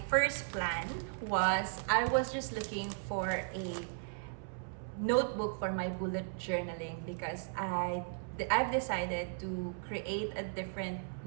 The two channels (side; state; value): left; silent; 54 dB below the other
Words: first plan was I was just looking for a notebook for my bullet journaling because I've decided to create a different